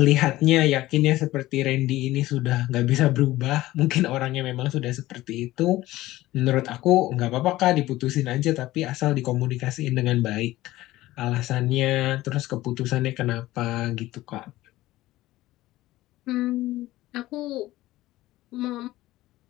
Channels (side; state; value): right; quieter; 16.8 dB